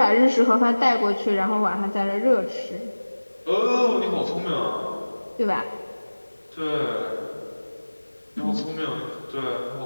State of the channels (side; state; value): both; inverted; correlation -1.00